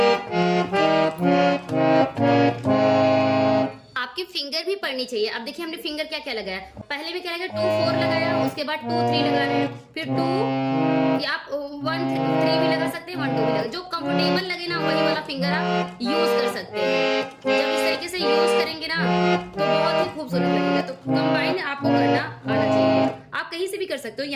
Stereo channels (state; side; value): identical; both; correlation 1.00